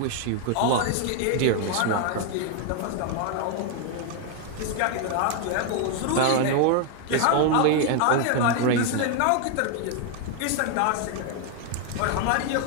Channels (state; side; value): different; both; correlation 0.00